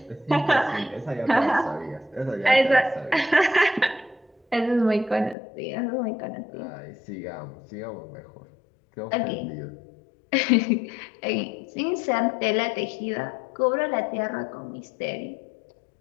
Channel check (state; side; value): drops out; right; at 5.4 s